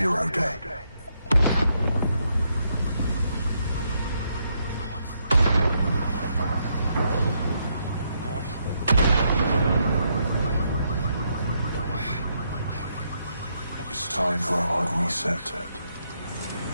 day. It's time for a hard reset.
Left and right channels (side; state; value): both; inverted; correlation -0.77